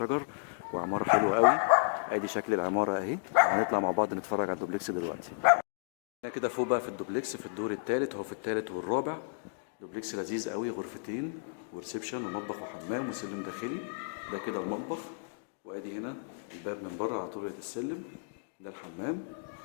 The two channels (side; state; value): right; silent; digital silence